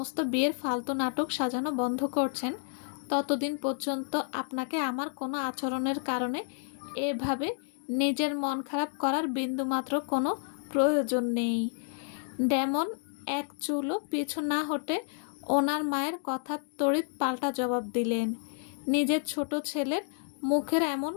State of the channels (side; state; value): right; silent; digital silence